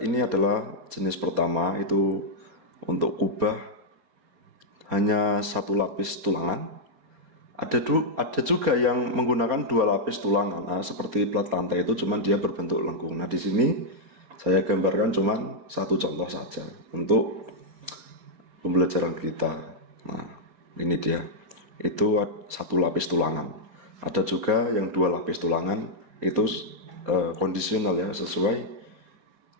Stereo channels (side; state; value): left; late; 4.3 ms